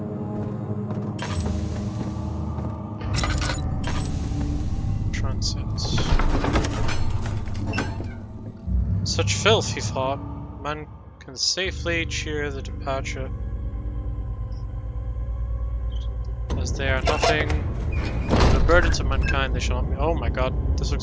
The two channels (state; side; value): identical; both; correlation 1.00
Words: Transit. Such filth, he thought. Man can safely cheer the departure. As they are nothing. The burden to mankind, they shall not be. Oh my god, this